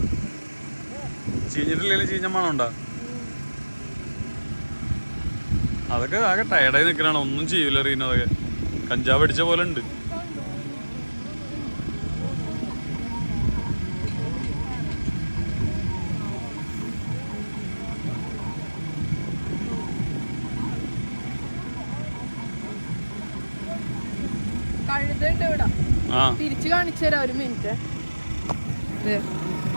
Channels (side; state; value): both; inverted; correlation -1.00